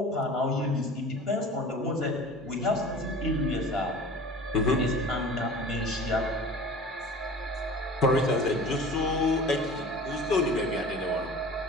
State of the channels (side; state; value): both; normal; correlation 0.40